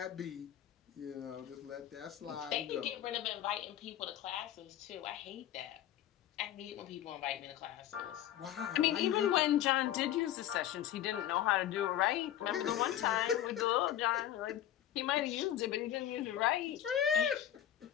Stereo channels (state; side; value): quieter; right; 11.6 dB